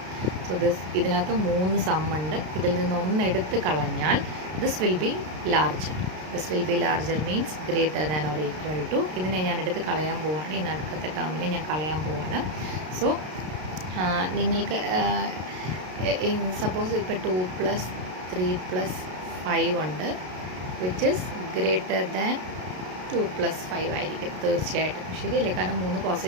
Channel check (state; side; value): late; left; 33 ms